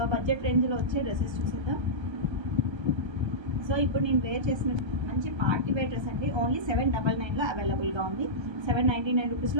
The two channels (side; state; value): left; late; 1.3 ms